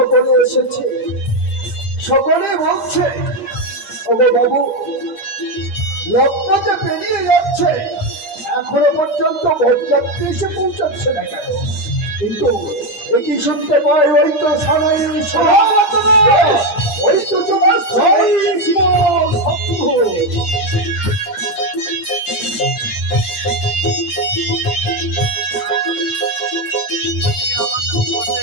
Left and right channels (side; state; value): right; late; 8.6 ms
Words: এসেছে সকলে বলছে ওগো বাবু লগ্ন যে পেরিয়ে যাচ্ছে এখনো পর্যন্ত বরযাত্রী এসে পৌঁছাচ্ছে না কেন কিন্তু একই শুনতে পাই ওই তো সারাই ওই তো তোমার শম্ভু।